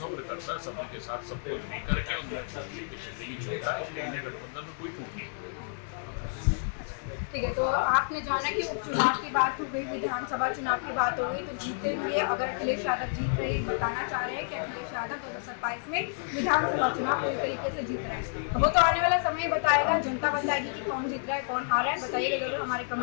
करता है सब्र के साथ सब कुछ लेकर के उनके चलने की क्षमता है, इसलिए इंडिया गठबंधन में कोई टूट नहीं। ठीक है, तो आपने जाना कि उपचुनाव की बात हो गई, विधानसभा चुनाव की बात हो गई, तो जीते हुए अगर अखिलेश यादव जीत रहे बताना चाह रहे हैं कि अखिलेश यादव 2027 में विधानसभा चुनाव पूरी तरीके से जीत रहे हैं, तो वो तो आने वाला समय बताएगा, जनता बताएगी कि कौन जीत रहा है कौन हारा है। बताइएगा जरूर हमारे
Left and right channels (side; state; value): right; silent; 58 dB below the other